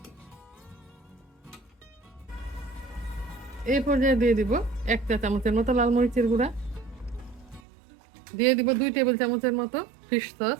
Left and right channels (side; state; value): left; drops out; at 7.6 s